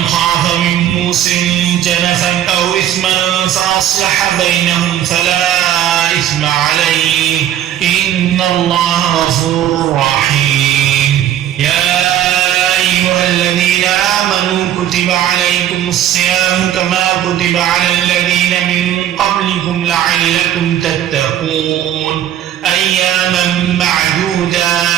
خاف من موص جنفا أو إثما فأصلح بينهم فلا إثم عليه إن الله غفور رحيم يا أيها الذين آمنوا كتب عليكم الصيام كما كتب على الذين من قبلكم لعلكم تتقون أياما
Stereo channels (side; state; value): left; quieter; 11.3 dB